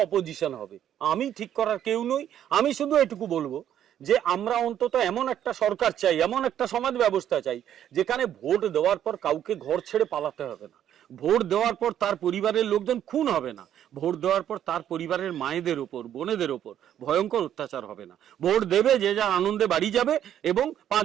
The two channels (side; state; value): left; quieter; 10.5 dB